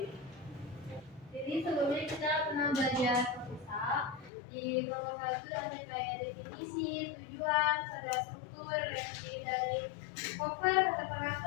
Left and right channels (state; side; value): drops out; right; at 4.3 s